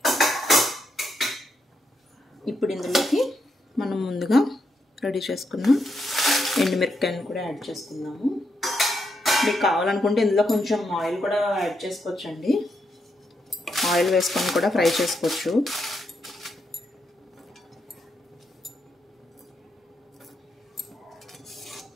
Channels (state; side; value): normal; both; correlation 0.81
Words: ఇప్పుడు ఇందులోకి మనం ముందుగా రెడీ చేసుకున్న ఎండుమిరపకాయలను కూడా యాడ్ చేసుకుందాము. మీకు కావాలనుకుంటే ఇందులో కొంచెం ఆయిల్ కూడా యాడ్ చేసుకోవచ్చండి. ఆయిల్ వేసుకొని కూడా ఫ్రై చేసుకోవచ్చు.